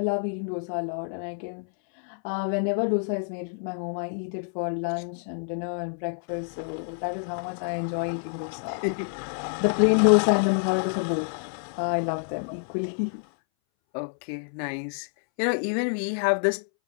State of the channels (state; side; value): silent; right; 60 dB below the other